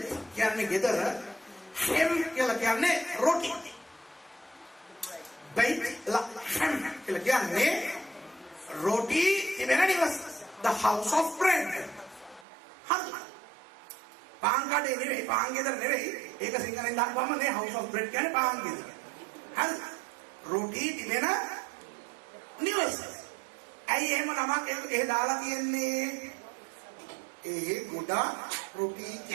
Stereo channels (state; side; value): drops out; left; at 12.5 s